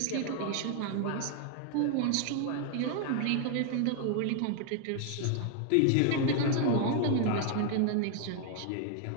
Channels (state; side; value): different; both; correlation 0.00